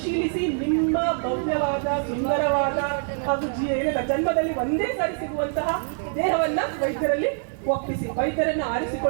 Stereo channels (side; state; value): left; silent; 62 dB below the other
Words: ನಿಮ್ಮ ಭವ್ಯವಾದ, ಸುಂದರವಾದ ಹಾಗೂ ಜನ್ಮದಲ್ಲಿ ಒಂದೇ ಸಾರಿ ಸಿಗುವಂತಹ ದೇಹವನ್ನ ವೈದ್ಯರಲ್ಲಿ ಒಪ್ಪಿಸಿ ವೈದ್ಯರನ್ನು